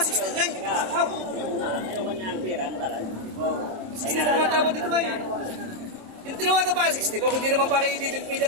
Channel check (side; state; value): left; late; 27 ms